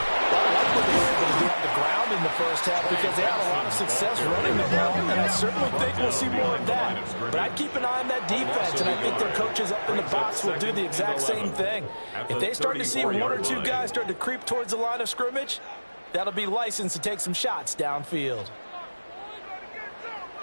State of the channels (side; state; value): both; inverted; correlation -1.00